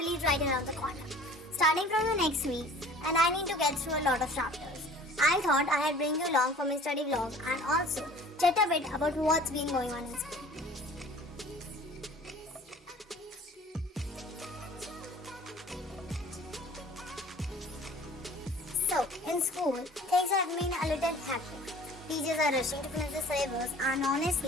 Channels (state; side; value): normal; both; correlation 0.47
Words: right around the corner. Starting from the next week and I need to get through a lot of chapters. I thought I'd bring you along for my study vlog and also chat a bit about what's been going on in school. So, in school, things have been a little hectic. Teachers are rushing to finish the syllabus and